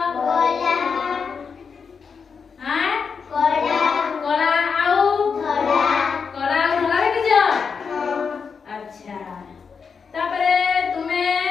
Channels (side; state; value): right; quieter; 5.8 dB